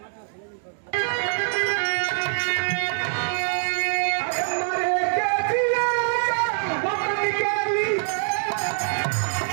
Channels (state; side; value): silent; left; 55 dB below the other